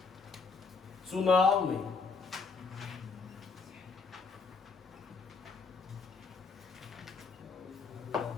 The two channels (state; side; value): quieter; right; 4.6 dB